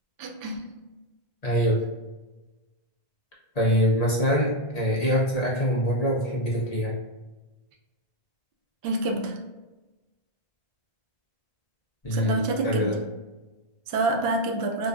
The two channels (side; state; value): right; late; 1.8 ms